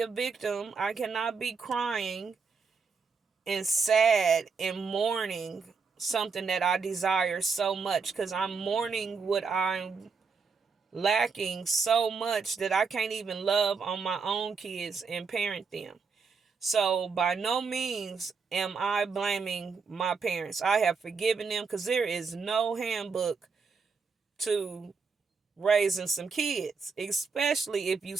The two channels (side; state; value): left; quieter; 5.2 dB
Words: victim. I cannot be crying and sad and mourning something that I desire so much, because I'm mourning what I'm lacking so much that I can't even love on my own kids and parent them. So by no means am I blaming my parents. I have forgiven them because there is no handbook to raising some kids, especially if you